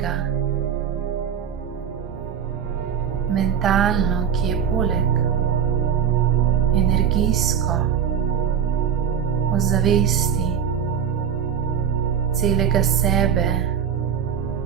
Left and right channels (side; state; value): left; quieter; 8.0 dB